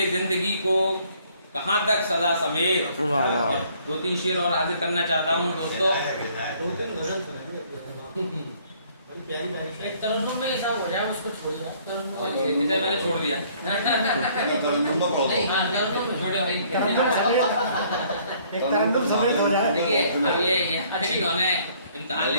जिंदगी को कहाँ तक सदा समेत। वाह वाह। 2-3 शेर और हाजिर करना चाहता हूँ दोस्तों। एक तरन्नुम में ऐसा हो जाए उसको छोड़ दिया, तरन्नुम चलिए, जिसे मैंने छोड़ दिया। नहीं, हाँ, तरन्नुम में छोड़ो भाई। एक तरन्नुम समेत हो जाए। देखिए अब ये इन्होंने इम्तिहान ले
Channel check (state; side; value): inverted; both; correlation -0.61